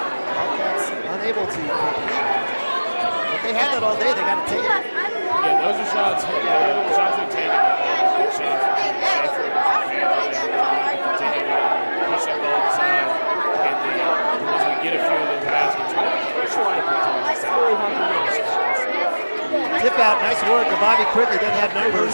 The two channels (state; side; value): inverted; both; correlation -1.00